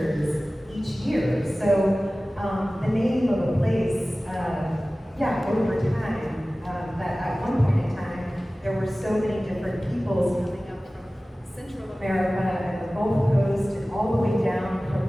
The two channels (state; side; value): normal; both; correlation 0.97